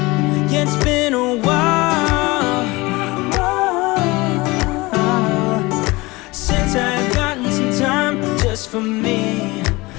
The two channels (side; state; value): right; quieter; 22.5 dB